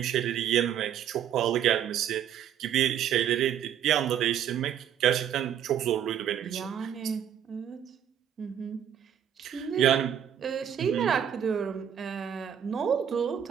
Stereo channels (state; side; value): quieter; left; 9.4 dB